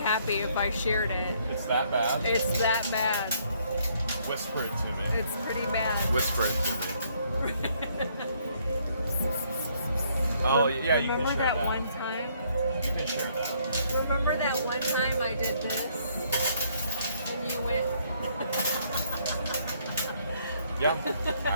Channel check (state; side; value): inverted; both; correlation -0.67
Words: if I shared it. It's that bad? It's that bad. Whisper it to me. It's pretty bad. Whisper it to me. Oh, yeah, you can Remember share that one time? You can share that. Remember that one time I did this? And you went... Yeah,